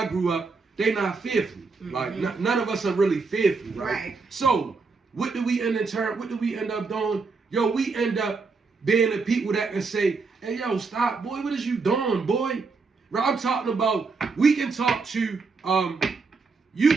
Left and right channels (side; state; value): left; quieter; 4.4 dB